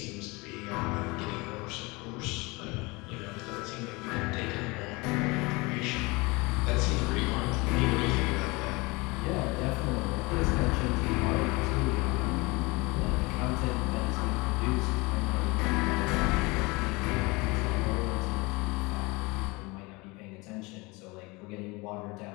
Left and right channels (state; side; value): quieter; right; 25.2 dB